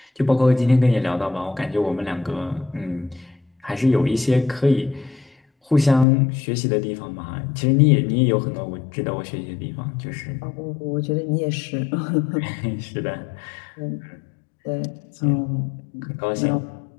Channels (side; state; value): right; drops out; at 6.1 s